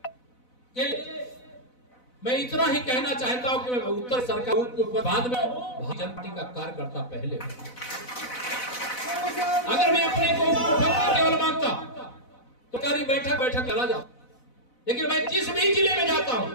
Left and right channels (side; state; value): right; late; 4.0 ms